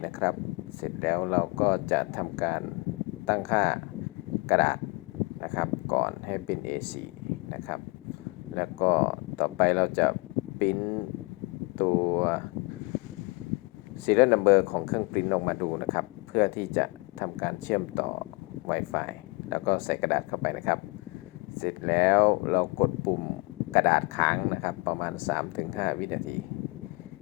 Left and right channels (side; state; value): right; quieter; 27.3 dB